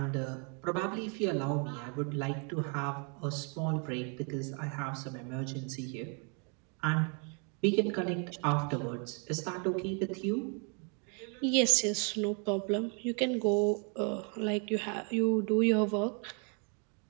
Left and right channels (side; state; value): left; quieter; 37.3 dB